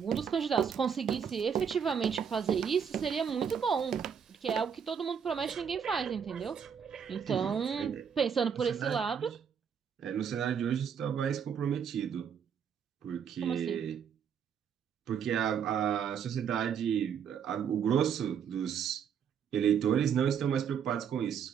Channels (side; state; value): left; quieter; 7.5 dB